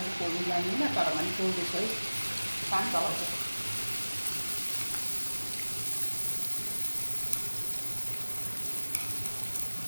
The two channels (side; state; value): both; inverted; correlation -1.00